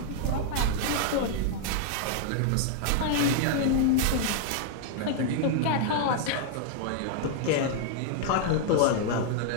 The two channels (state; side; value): different; both; correlation 0.00